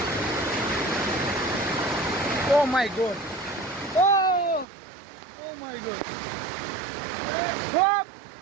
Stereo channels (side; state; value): left; drops out; at 4.7 s